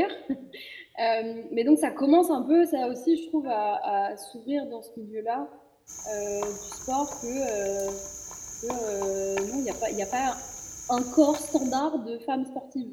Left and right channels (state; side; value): identical; both; correlation 1.00